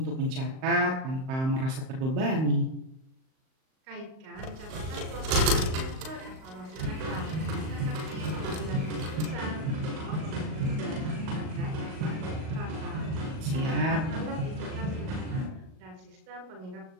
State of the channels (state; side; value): late; left; 38 ms